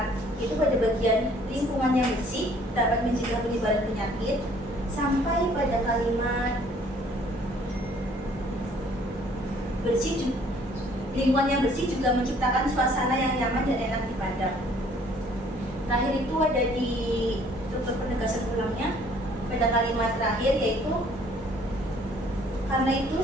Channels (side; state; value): both; normal; correlation 0.58